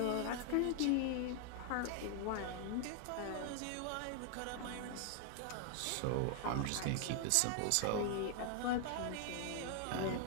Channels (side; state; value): both; different; correlation 0.00